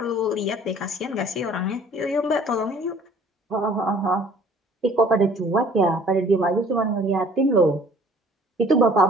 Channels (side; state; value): both; normal; correlation 0.53